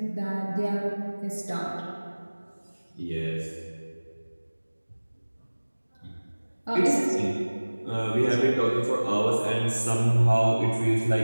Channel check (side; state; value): both; inverted; correlation -1.00